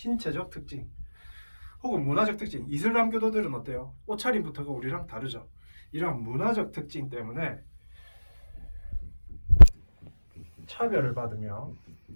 특징. 혹은 문화적 특징, 이슬람 교도들은 어때요? 옷차림부터가 우리랑 다르죠. 이런 문화적 특징 때문에 차별을 받으며,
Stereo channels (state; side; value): inverted; both; correlation -1.00